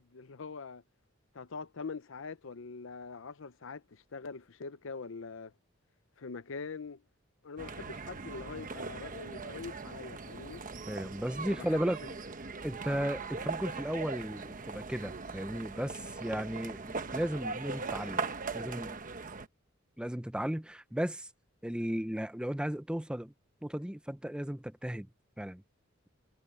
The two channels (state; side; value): normal; both; correlation 0.64